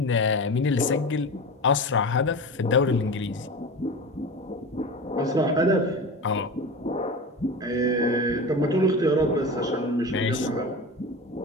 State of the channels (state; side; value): normal; both; correlation 0.28